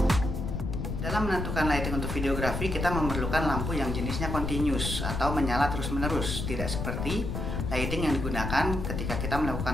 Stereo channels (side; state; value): left; noise; rumble, 3 dB below the sound